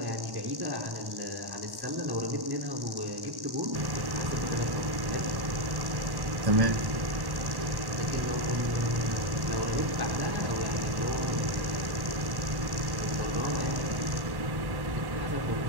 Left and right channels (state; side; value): late; left; 1.1 ms